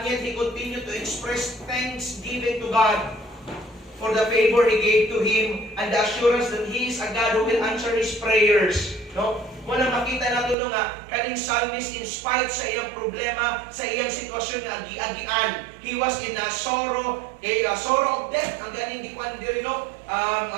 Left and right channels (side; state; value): left; drops out; at 10.6 s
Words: yet he continued to express thanksgiving to God for the favor He gave to him and the assurance that He is a God who will answer his prayers. No? Muna makita nato nga kaning psalmist in spite sa iyang problema, sa iyang sitwasyon nga agi-agian, he was in a sorrow, sorrow of death, ang ganing gikuan diri, no?